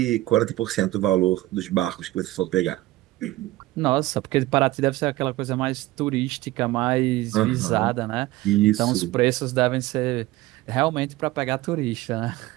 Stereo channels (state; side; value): quieter; left; 17.6 dB